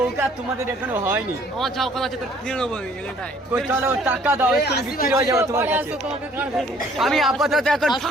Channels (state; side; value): normal; both; correlation 0.59